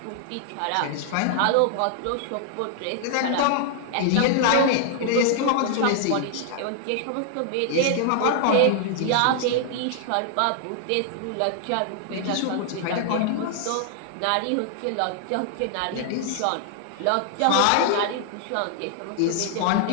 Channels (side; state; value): both; different; correlation 0.00